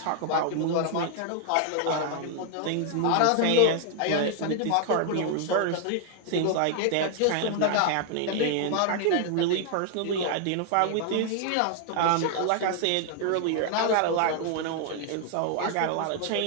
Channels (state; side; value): different; both; correlation 0.00